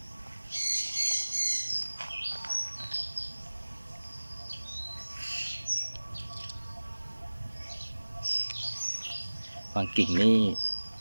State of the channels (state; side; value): inverted; both; correlation -1.00